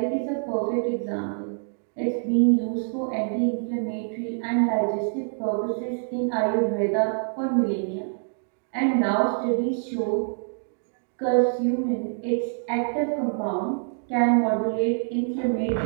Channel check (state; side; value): silent; left; digital silence